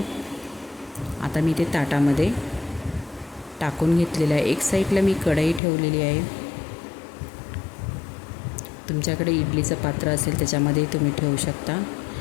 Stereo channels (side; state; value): right; drops out; at 5.6 s